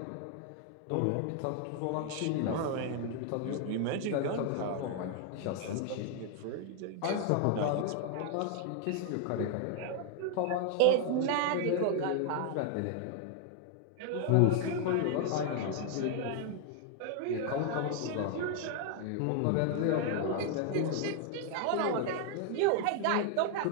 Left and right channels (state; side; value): different; both; correlation 0.00